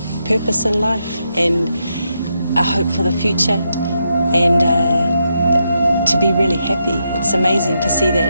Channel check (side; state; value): both; inverted; correlation -0.82